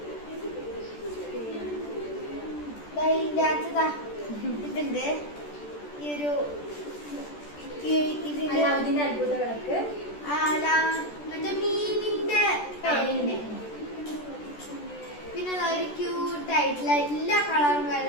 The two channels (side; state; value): right; late; 14 ms